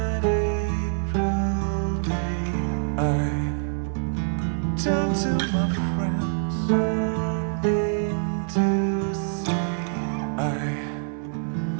I turned to my friends. I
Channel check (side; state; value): left; silent; digital silence